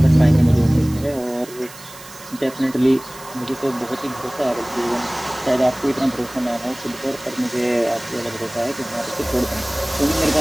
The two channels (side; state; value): right; noise; hiss, 18 dB below the sound